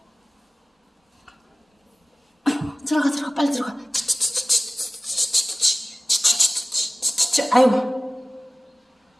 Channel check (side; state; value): both; normal; correlation 0.97